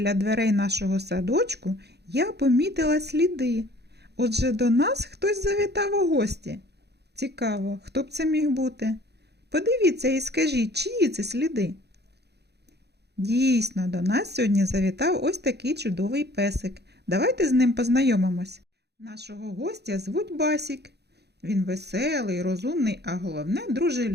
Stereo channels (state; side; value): late; left; 0.48 ms